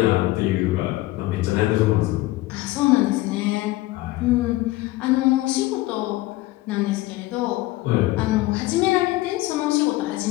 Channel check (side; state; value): right; quieter; 18.5 dB